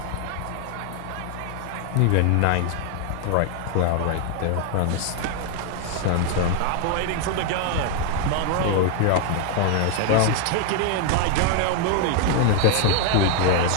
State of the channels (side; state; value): both; different; correlation 0.00